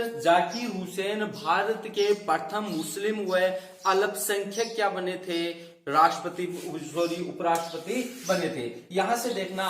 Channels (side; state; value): both; identical; correlation 1.00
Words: जाकिर हुसैन भारत के प्रथम मुस्लिम व अल्पसंख्यक क्या बने थे, राष्ट्रपति सॉरी उपराष्ट्रपति बने थे। यहां से देखना